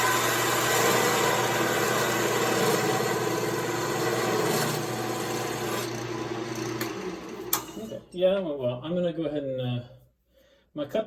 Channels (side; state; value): both; identical; correlation 1.00